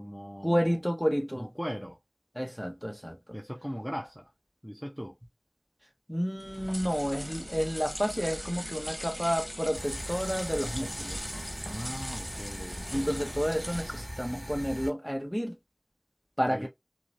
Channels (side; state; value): both; identical; correlation 1.00